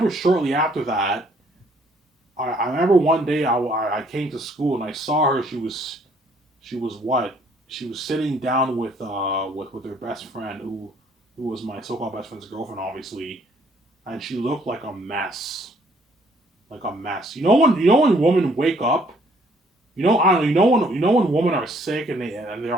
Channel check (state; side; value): normal; both; correlation 0.63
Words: shortly after that. I remember one day I came to school and I saw her. She was what? She was sitting down with her best friend who was my so-called best friend's girlfriend, obviously, and she looked like a mess, like a mess. You know when women wake up. I don't know. You know when women are sick and they're